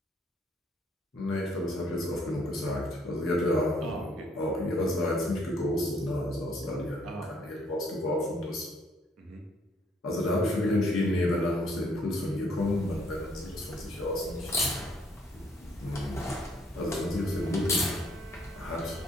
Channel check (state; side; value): normal; both; correlation 0.66